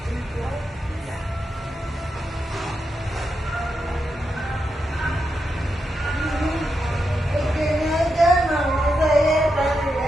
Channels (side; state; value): both; normal; correlation 0.85